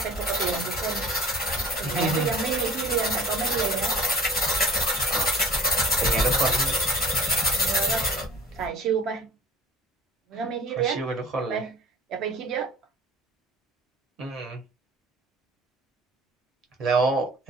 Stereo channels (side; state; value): both; normal; correlation 0.45